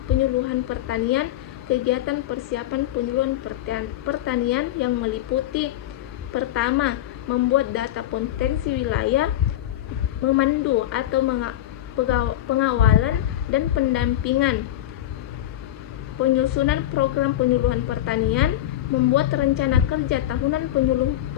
penyuluhan pertanian, kegiatan persiapan penyuluhan pertanian yang meliputi: pertama, membuat data potensi wilayah, memandu atau pengawalan dan pendampingan, penyusunan program penyuluhan pertanian, membuat rencana kerja tahunan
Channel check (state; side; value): quieter; right; 13.0 dB